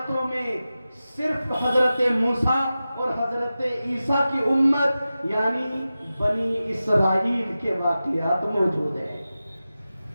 میں صرف حضرت موسیٰ اور حضرت عیسیٰ کی امت یعنی بنی اسرائیل کے واقعات موجود ہیں۔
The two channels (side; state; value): both; inverted; correlation -0.94